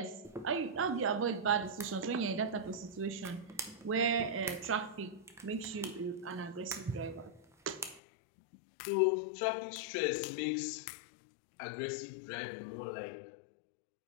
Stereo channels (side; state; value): right; drops out; at 8.0 s